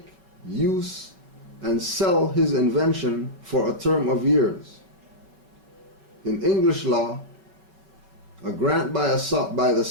use, and sell his invention for a term of years. In English law, a grant by the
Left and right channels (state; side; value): late; left; 5.2 ms